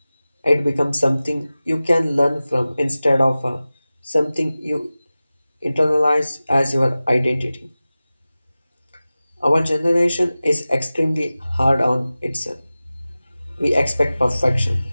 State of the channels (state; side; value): inverted; both; correlation -0.97